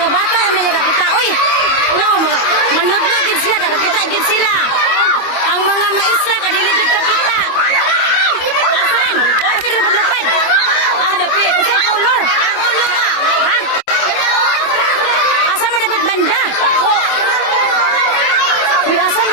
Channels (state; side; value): late; right; 25 ms